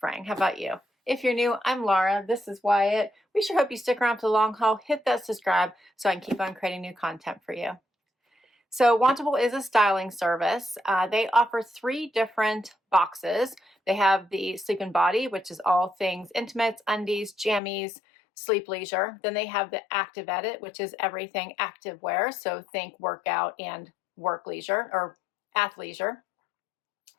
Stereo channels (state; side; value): drops out; right; at 17.6 s